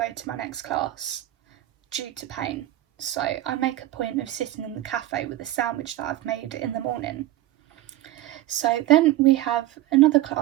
to my next class due to pain. So I make a point of sitting in the cafe with a sandwich that I've made in the morning. So then we have another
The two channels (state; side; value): quieter; left; 15.2 dB